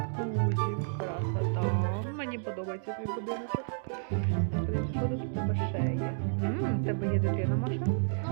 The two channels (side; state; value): left; silent; digital silence